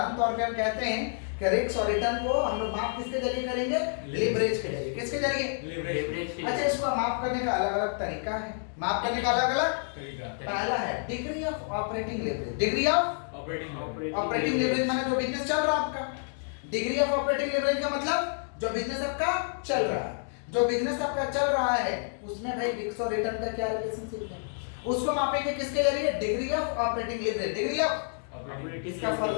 तौर पे हम कहते हैं कि रिस्क और रिटर्न को हम लोग माप किसके जरिए करेंगे? लीवरेज के जरिए। किसके जरिए? लीवरेज। अच्छा, इसको माप करने का अलग-अलग तरीका है। माप करने का अलग-अलग तरीका। पहला है degree of operating leverage. Degree of operating leverage माने जो बिजनेस चल रहा है आपका। डिग्री ऑफ ऑपरेटिंग लीवरेज का मतलब जो बिजनेस आपका चल रहा है, जो बिजनेस आपका चल रहा है उसमें भाई रिस्क और रिटर्न का क्या रिलेशनशिप है, उसको मापेंगे किसके जरिए? Degree of operating leverage. Degree of इसका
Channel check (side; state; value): right; silent; digital silence